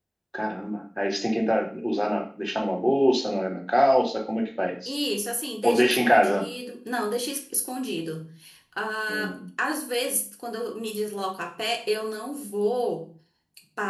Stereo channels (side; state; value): both; identical; correlation 1.00